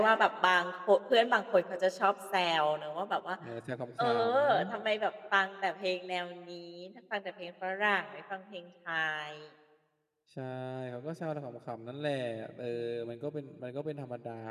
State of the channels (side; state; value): both; identical; correlation 1.00